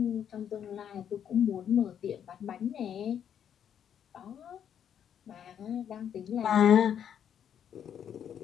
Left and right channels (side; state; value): right; quieter; 8.9 dB